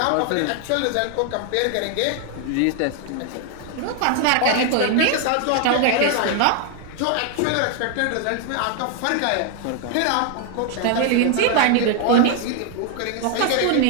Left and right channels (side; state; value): both; different; correlation 0.00